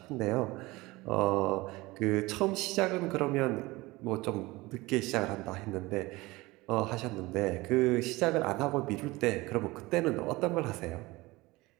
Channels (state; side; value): quieter; left; 21.1 dB